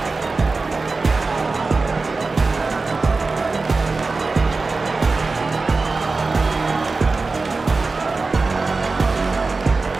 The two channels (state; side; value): quieter; left; 3.9 dB